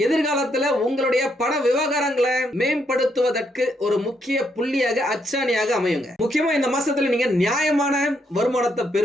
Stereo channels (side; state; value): both; normal; correlation 0.76